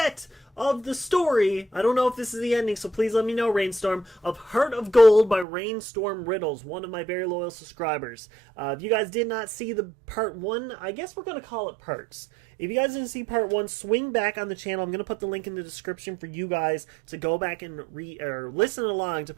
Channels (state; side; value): drops out; left; at 5.5 s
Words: of the story. I don't know if this is the ending, so please let me know, Rainstorm, of Heart of Gold by Rainstorm Riddles, one of my very loyal subscribers. If you guys did not see the part 1, I guess we're going to call it parts. If you guys didn't see part 1, swing back on the channel. I'm going to put the link in the description for you guys to go back and listen along to